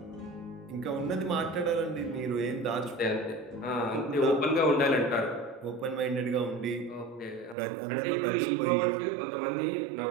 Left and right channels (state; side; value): drops out; left; at 7.6 s